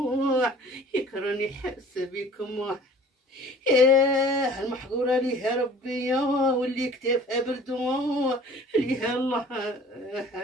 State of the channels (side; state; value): both; normal; correlation 0.48